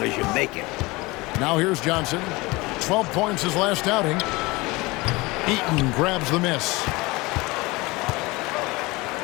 as you make it. Now here's Johnson. 12 points his last outing. Eaton grabs the miss.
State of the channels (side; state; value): right; quieter; 22.9 dB